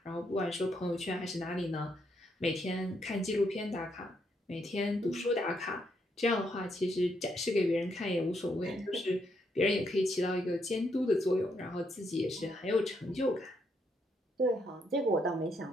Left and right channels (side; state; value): both; normal; correlation 0.76